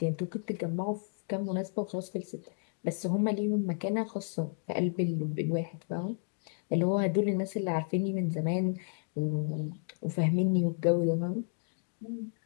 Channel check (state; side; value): silent; right; 56 dB below the other